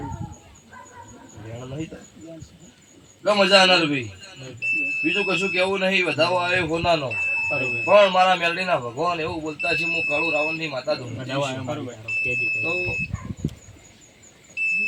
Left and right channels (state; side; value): identical; both; correlation 1.00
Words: મજા આનાર ભાઈ બીજું કશું કેવું નહીં વધાવો આવે હોનાનો પણ મારા મેલડીના ભગવાન એવું બોલતા છે હું કાળુ રાવણની માતા તો